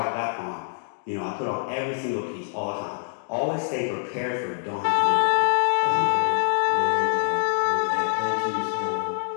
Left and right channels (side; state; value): right; silent; digital silence